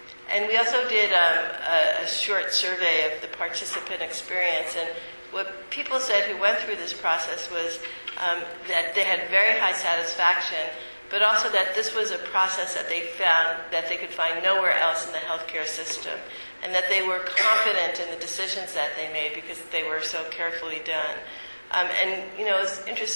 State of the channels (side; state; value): both; inverted; correlation -1.00